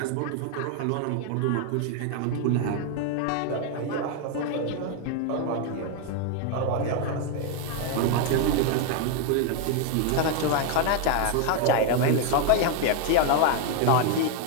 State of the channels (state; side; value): different; both; correlation 0.00